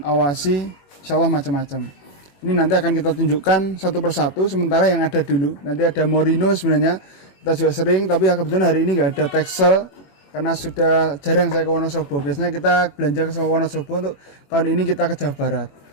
awasi, insyaallah macam-macam. Ini nanti akan kita tunjukkan satu persatu, sementara yang ada dulu. Nanti ada Morino sebenarnya, kita juga sering, tapi kebetulan hari ini nggak ada Texel, karena sudah jarang saya ke Wonosobo. Biasanya kita belanja ke Wonosobo, untuk tahun ini kita ke Jawa Barat.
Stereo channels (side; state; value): right; late; 21 ms